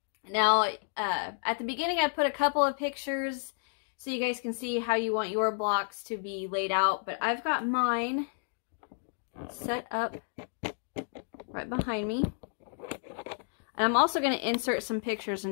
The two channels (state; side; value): silent; right; digital silence